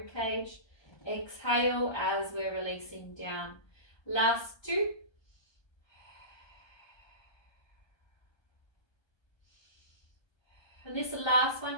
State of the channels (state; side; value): late; right; 1.2 ms